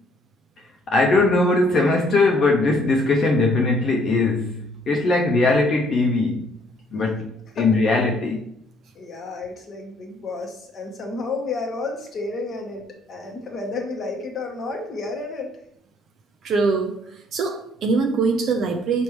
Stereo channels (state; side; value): normal; both; correlation 0.64